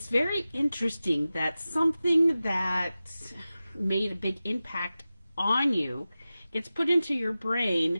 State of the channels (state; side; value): inverted; both; correlation -0.95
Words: very interesting that something that made a big impact on you gets put into your